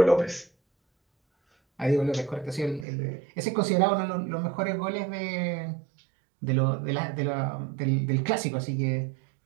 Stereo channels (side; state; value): left; drops out; at 2.9 s